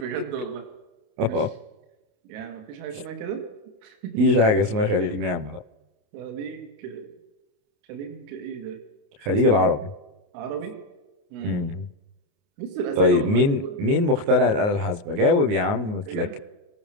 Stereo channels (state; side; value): late; left; 28 ms